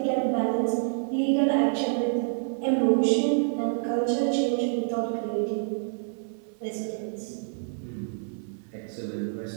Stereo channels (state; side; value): silent; left; digital silence